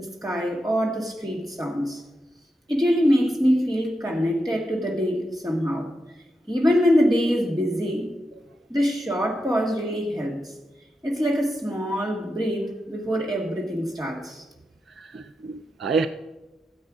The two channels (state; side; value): normal; both; correlation 0.87